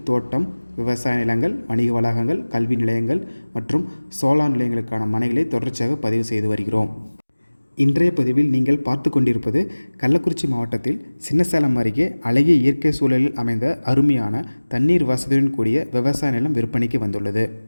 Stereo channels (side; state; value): both; inverted; correlation -1.00